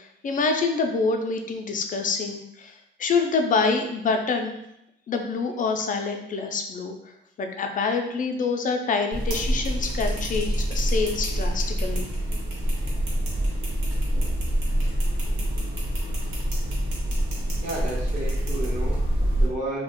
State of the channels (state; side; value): normal; both; correlation 0.61